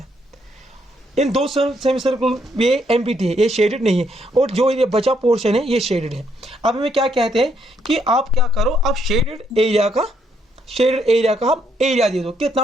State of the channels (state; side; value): normal; both; correlation 0.73